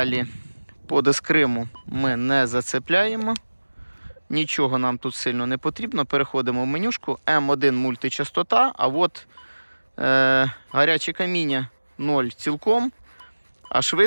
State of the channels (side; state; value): both; inverted; correlation -1.00